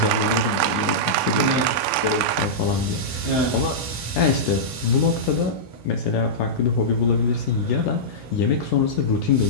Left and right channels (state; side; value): normal; both; correlation -0.12